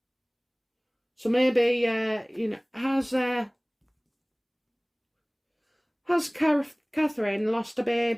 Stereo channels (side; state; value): both; identical; correlation 1.00